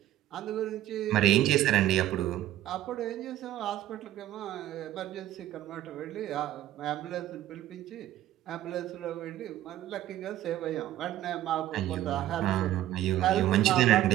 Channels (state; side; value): quieter; left; 13.4 dB